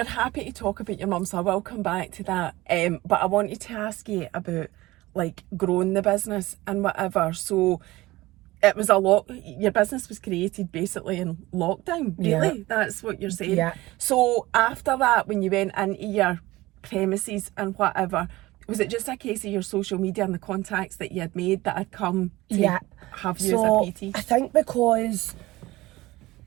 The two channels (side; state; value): left; quieter; 19.0 dB